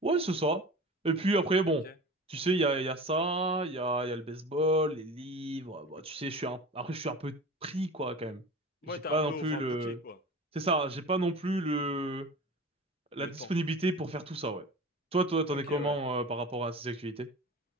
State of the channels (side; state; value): both; normal; correlation 0.35